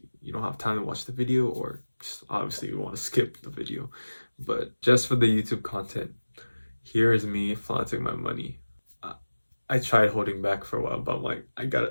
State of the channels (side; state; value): both; inverted; correlation -1.00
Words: you don't have time to watch the video, or just obviously you want to skip the video. But just for the YouTube content, here is me flaunting my money. I tried holding back for a while, but I'm like, I